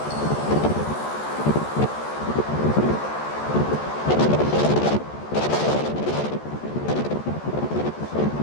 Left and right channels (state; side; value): late; right; 14 ms